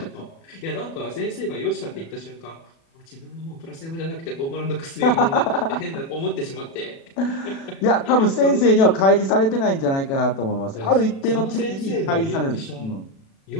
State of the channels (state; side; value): late; right; 36 ms